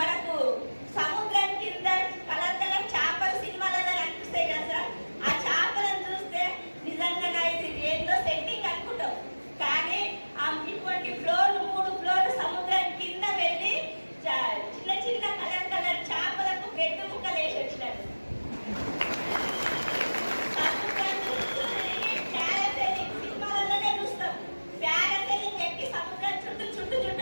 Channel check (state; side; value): inverted; both; correlation -1.00